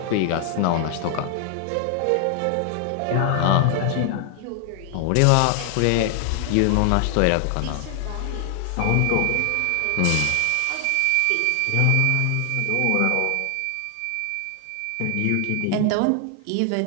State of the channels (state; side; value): different; both; correlation 0.00